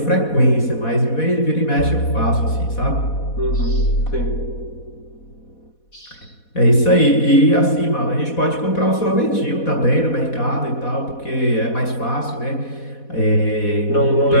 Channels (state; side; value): late; right; 4.1 ms